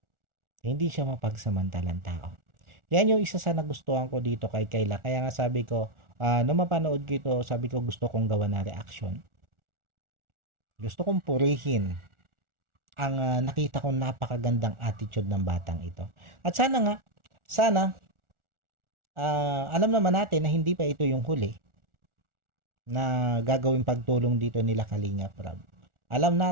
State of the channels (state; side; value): late; left; 1.4 ms